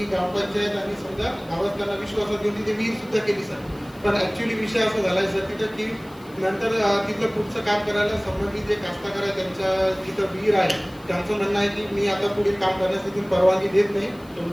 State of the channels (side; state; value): left; noise; hiss, 26 dB below the sound